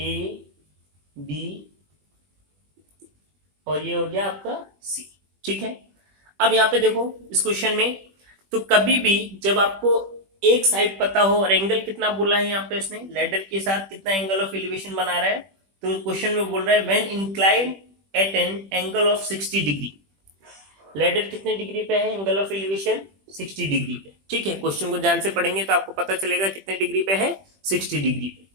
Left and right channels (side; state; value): left; late; 21 ms